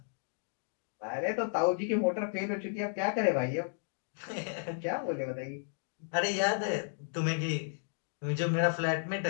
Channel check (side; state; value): right; silent; digital silence